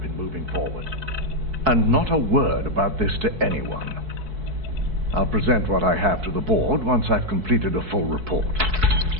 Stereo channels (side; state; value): left; late; 4.6 ms